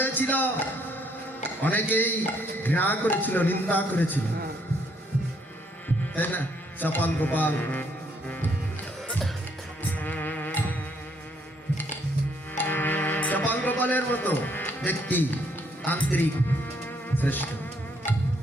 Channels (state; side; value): normal; both; correlation 0.69